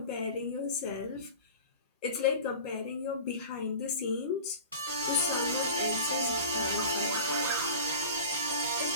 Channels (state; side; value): inverted; both; correlation -0.35